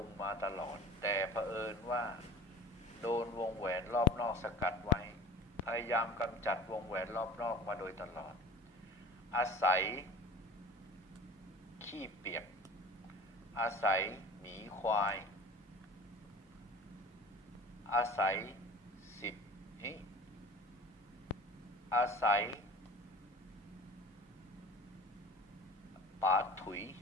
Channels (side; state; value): both; normal; correlation 0.40